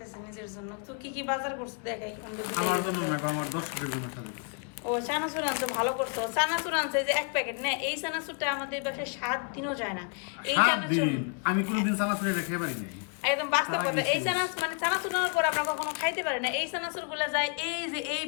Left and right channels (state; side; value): quieter; right; 38.6 dB